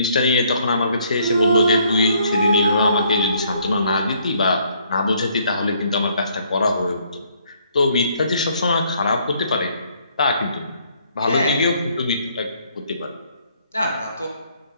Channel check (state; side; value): inverted; both; correlation -0.66